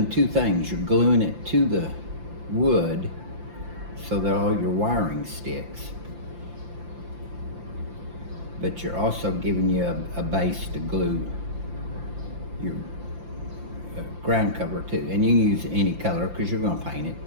two things. You're gluing it to the wood so that all your wiring sticks, but you're also giving you a base to glue your ground cover to. And you can use any color because you're going to paint it,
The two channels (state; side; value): late; left; 5.8 ms